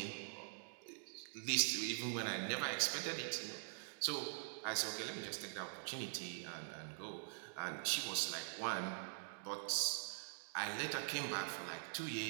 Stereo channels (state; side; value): silent; left; digital silence